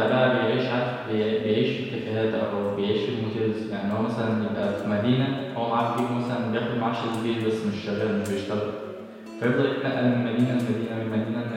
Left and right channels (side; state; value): both; identical; correlation 1.00